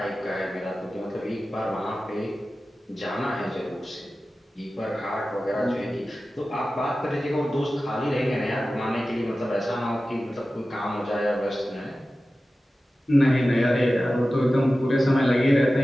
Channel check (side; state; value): both; normal; correlation 0.95